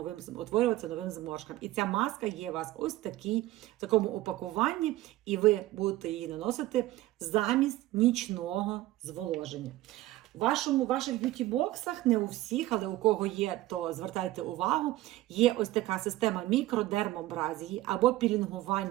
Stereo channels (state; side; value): quieter; left; 16.6 dB